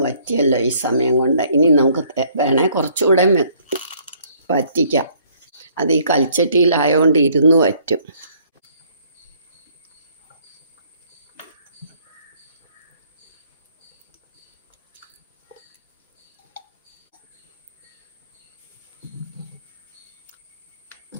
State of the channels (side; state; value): both; inverted; correlation -0.62